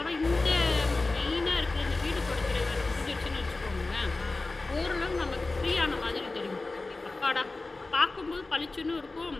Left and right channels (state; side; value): quieter; right; 3.3 dB